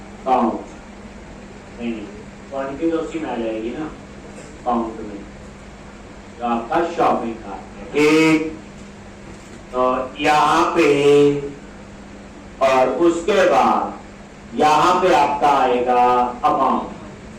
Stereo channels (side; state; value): both; identical; correlation 1.00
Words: काउंट। नहीं क्वांटिटी तो उसी में आ जाएगी ना, काउंट में, तो आपका शॉपिंग कार्ट है। ठीक, तो यहां पे और उसके बाद यहां पे आपका आएगा amount,